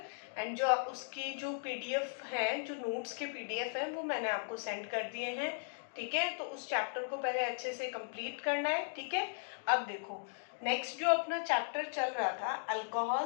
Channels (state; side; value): silent; right; digital silence